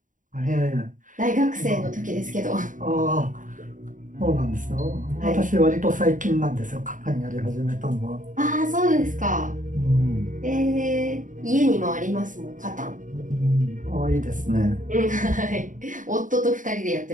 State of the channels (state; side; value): late; left; 0.38 ms